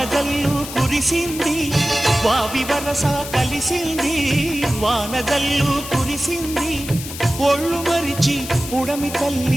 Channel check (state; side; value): noise; left; hiss, 10 dB below the sound